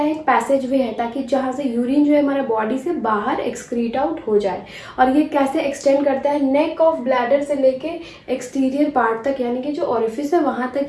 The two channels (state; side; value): identical; both; correlation 1.00